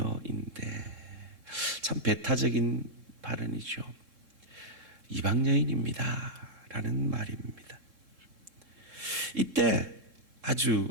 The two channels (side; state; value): left; late; 3.7 ms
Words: 참 배타적인 발언이죠. 이방 여인입니다 라는 말입니다. 이때 아주